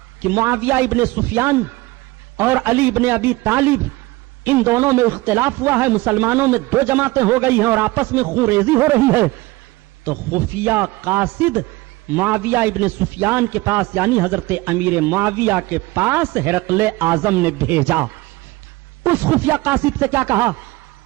کہ معاویہ ابن سفیان اور علی ابن ابی طالب ان دونوں میں اختلاف ہوا ہے، مسلمانوں میں دو جماعتیں ہو گئی ہیں اور آپس میں خون ریزی ہو رہی ہے، تو خفیہ قاصد معاویہ ابن سفیان کے پاس یعنی حضرت امیر معاویہ کے پاس ہرقل اعظم نے بھیجا. اس خفیہ قاصد سے کیا کہا؟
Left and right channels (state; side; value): quieter; left; 20.6 dB